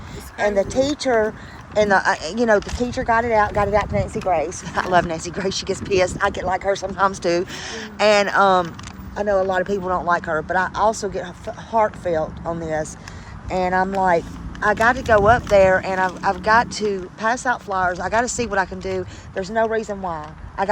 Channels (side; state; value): both; identical; correlation 1.00